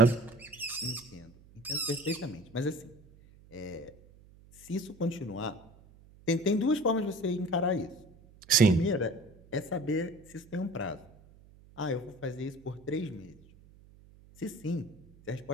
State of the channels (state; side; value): noise; right; hum, 24 dB below the sound